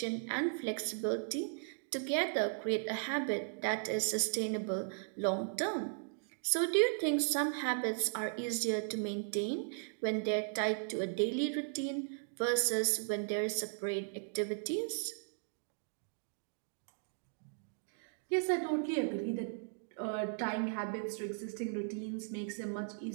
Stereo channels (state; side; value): silent; left; digital silence